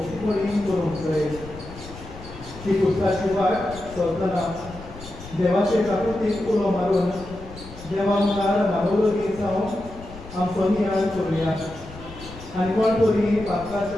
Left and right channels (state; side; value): noise; left; rumble, 16 dB below the sound